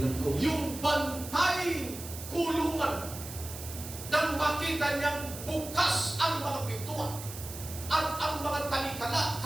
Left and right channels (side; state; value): right; noise; hiss, 11 dB below the sound